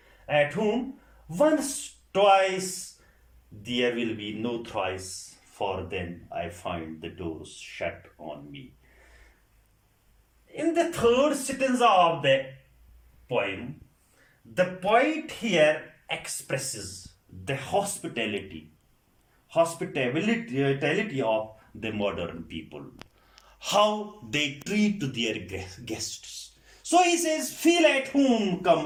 at home, once, twice, there will be no thrice, for then I find the doors shut on me. In the third stanza of the poem, the poet here expresses the hospitality of the modern people, how they treat their guests. So he says, feel at home, come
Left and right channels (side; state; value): both; identical; correlation 1.00